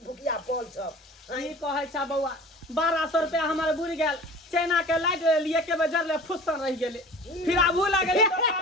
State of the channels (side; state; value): both; normal; correlation 0.41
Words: बुकिया पॉल सब ई कहै छ बौआ 1200 रुपया हमारे बुड़ गेल चाइना के लाइट लिए के बजर ले फुसन रह गेले फिर आबू लागले